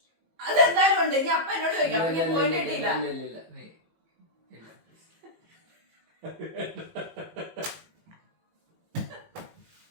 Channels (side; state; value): left; late; 18 ms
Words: അതെന്തായാലും ഉണ്ട്. ഇനി അപ്പ എന്നോട് ചോദിക്കാം.